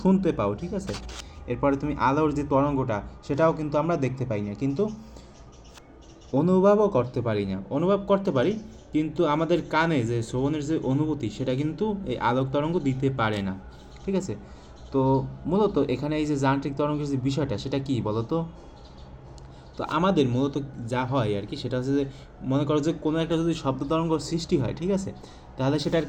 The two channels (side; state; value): both; identical; correlation 1.00